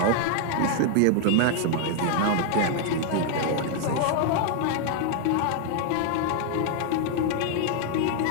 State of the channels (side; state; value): both; different; correlation 0.00